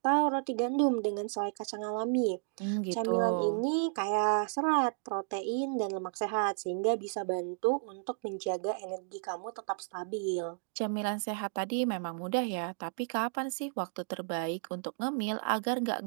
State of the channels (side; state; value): left; silent; digital silence